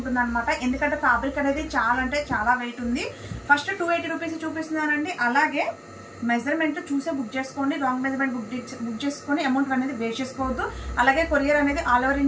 అనమాట. ఎందుకంటే ఫ్యాబ్రిక్ అనేది చాలా వెయిట్ ఉంది. ఫస్ట్ 280 రూపీస్ చూపిస్తున్నానండి. అలాగే మెజర్మెంట్ చూసే బుక్ చేసుకోండి. రాంగ్ మెజర్మెంట్ బుక్ చేసుకొని అమౌంట్ అనేది వేస్ట్ చేసుకోవద్దు. అలాగే కొరియర్ అనేది ఆల్ ఓవర్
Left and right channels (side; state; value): both; identical; correlation 1.00